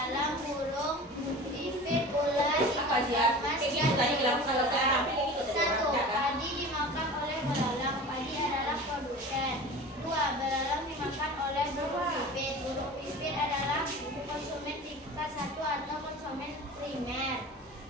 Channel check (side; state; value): both; normal; correlation 0.37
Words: burung, pipit, ular, Apa ikan sih? emas, Kayak gitu tadi bilang kalau saya rapi kayak gitu tadi. Satu, Ya, kan? padi dimakan oleh belalang. Padi adalah produsen. 2, belalang dimakan oleh burung pipit. Burung pipit adalah konsumen tingkat 1 atau konsumen primer.